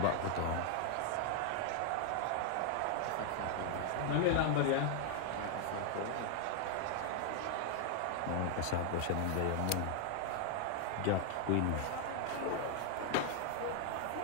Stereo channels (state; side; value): different; both; correlation 0.00